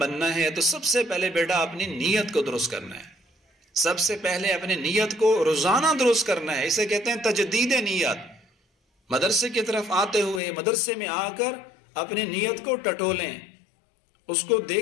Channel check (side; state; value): right; drops out; at 10.4 s